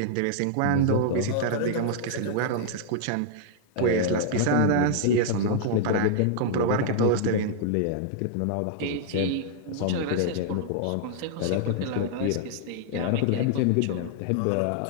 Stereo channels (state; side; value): different; both; correlation -0.01